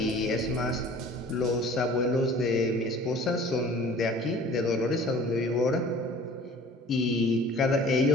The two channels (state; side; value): normal; both; correlation 0.47